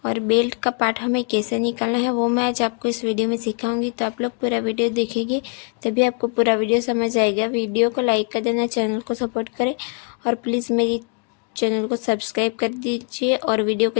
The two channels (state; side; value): quieter; right; 39.5 dB